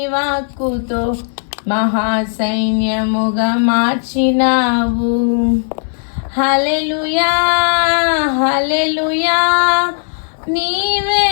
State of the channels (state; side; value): silent; right; 69 dB below the other